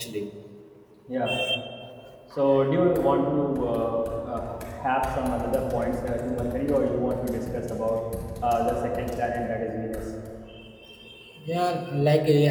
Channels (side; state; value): both; identical; correlation 1.00